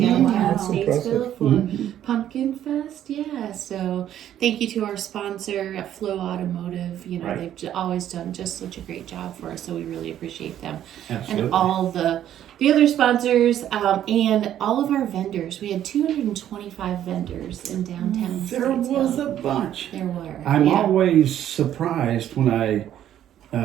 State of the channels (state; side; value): quieter; left; 11.2 dB